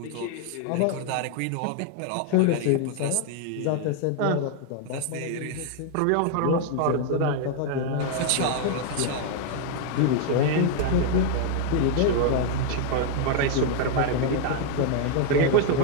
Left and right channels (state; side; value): different; both; correlation 0.00